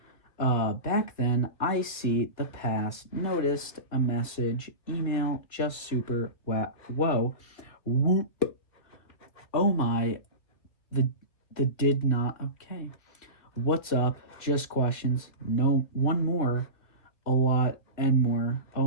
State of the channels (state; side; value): late; right; 2.4 ms